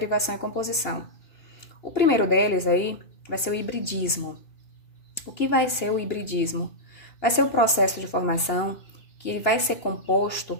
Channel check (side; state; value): right; late; 3.0 ms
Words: e composição. O primeiro deles aí vai ser o hibridismo. O que vai ser o hibridismo? Vai ser o processo de formação que vai ser composto,